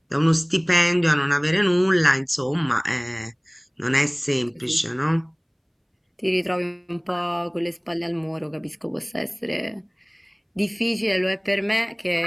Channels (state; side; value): identical; both; correlation 1.00